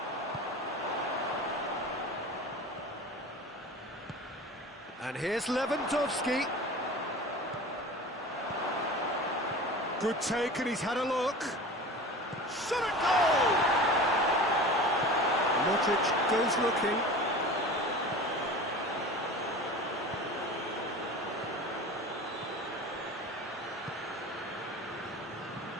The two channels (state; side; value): normal; both; correlation 0.36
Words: And here's Lewandowski. Good take, and he's had a look. Shot at goal! Modric goes looking.